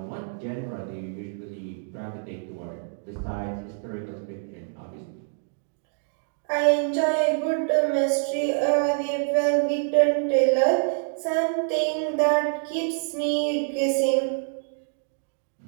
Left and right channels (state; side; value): silent; left; digital silence